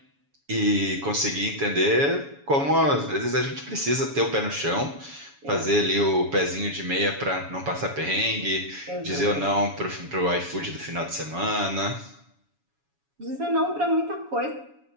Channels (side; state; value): left; late; 7.1 ms